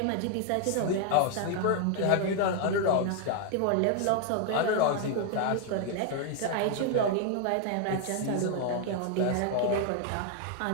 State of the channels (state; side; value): different; both; correlation 0.00